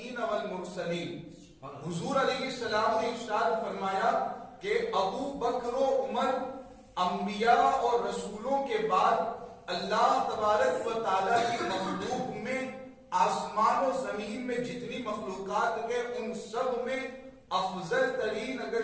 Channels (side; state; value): both; identical; correlation 1.00